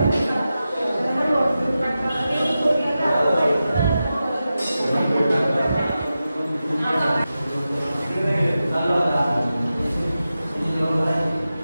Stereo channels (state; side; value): inverted; both; correlation -0.92